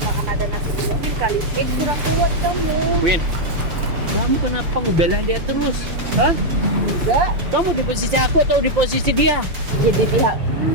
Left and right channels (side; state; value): left; late; 6.8 ms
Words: karena ada nasi di mobil kali. Kurang kuat kamu. Win, kamu kenapa ngebelain dia terus? Hah? Enggak. Kamu di posisi aku atau di posisi dia? Jadi pihak